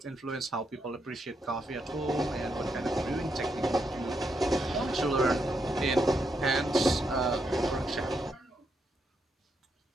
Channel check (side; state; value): both; normal; correlation 0.80